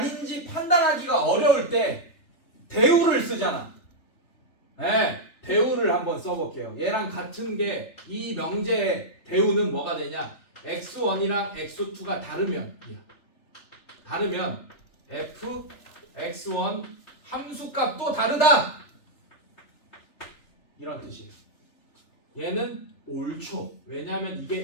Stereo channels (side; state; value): right; late; 3.4 ms